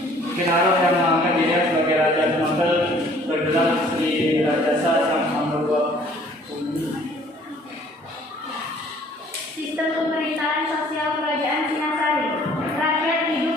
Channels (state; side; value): normal; both; correlation 0.56